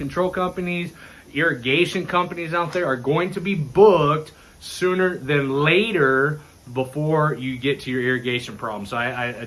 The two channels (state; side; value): identical; both; correlation 1.00